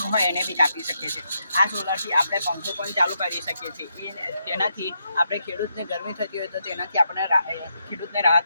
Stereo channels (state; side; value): inverted; both; correlation -0.81